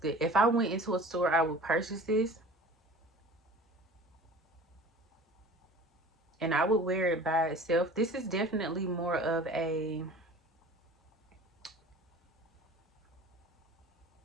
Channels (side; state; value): both; normal; correlation 0.43